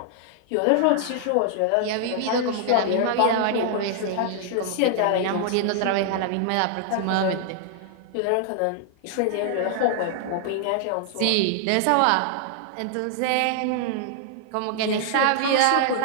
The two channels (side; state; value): both; different; correlation -0.01